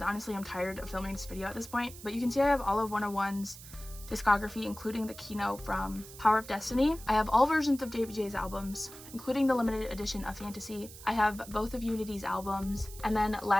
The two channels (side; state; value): right; noise; hiss, 16 dB below the sound